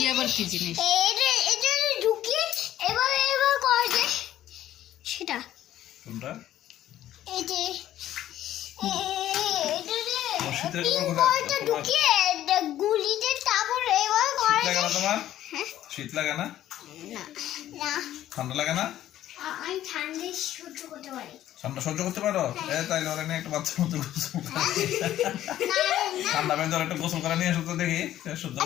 আবার কি জিনিস? সেটা এই যে গুলিতে তারপর এবার শীত লাগে না? ঠান্ডা লাগে না? আমি ঠান্ডা সহ্য করতে পারি। ঠান্ডা সহ্য করতে পারো? তাই ওরা নিয়ে একটা বাচ্চার মতো গোসল করে, ঠান্ডা পেয়ে ধর একটা গোসল করে নিয়ে এসো তো দেখি সহ্য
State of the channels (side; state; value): right; quieter; 12.7 dB